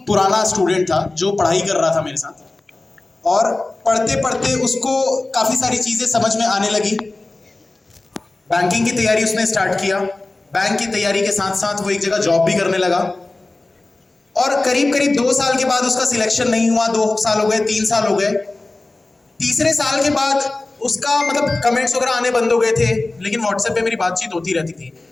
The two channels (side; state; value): right; quieter; 3.1 dB